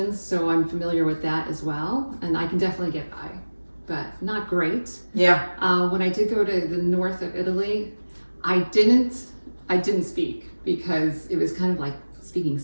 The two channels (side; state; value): both; inverted; correlation -1.00